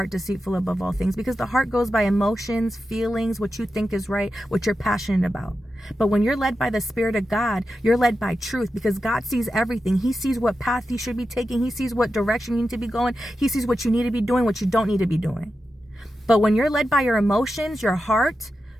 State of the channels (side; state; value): both; normal; correlation 0.90